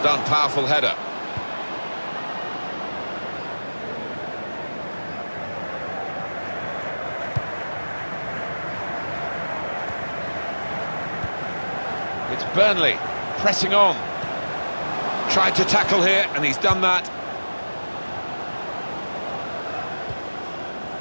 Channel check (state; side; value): inverted; both; correlation -1.00